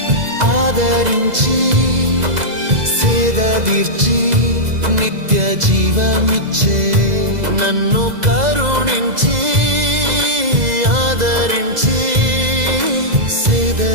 ఆదరించి సేదదీర్చి నిత్య జీవమిచ్చే. నన్ను కరుణించి ఆదరించి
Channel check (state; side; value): late; left; 2.0 ms